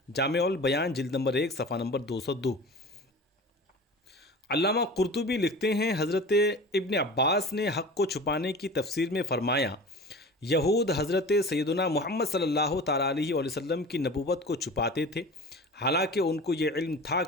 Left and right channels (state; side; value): normal; both; correlation 0.36